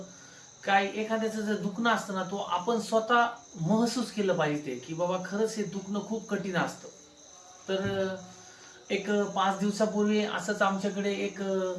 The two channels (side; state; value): both; identical; correlation 1.00